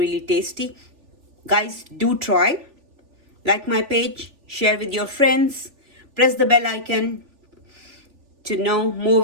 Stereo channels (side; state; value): left; late; 3.4 ms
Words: tasty. Guys, do try. Like my page, share with your friends, press the bell icon to know more